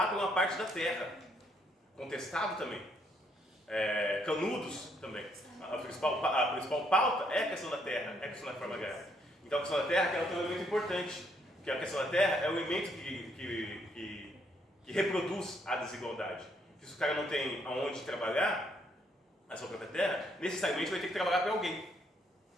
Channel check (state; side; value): normal; both; correlation 0.71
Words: por uma parte da terra, contestado também, canudos também. A principal pauta é a questão da terra, é a questão da reforma agrária. Então a questão da terra ela tem um elemento importante, que a questão da terra é o elemento que reproduz a desigualdade. Se o cara não tem aonde trabalhar a sua própria terra, necessariamente vai ter que trabalhar para alguém,